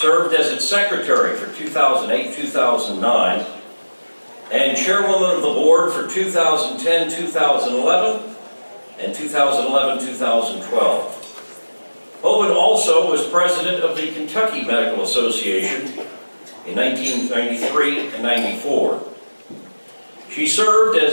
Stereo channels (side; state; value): both; inverted; correlation -1.00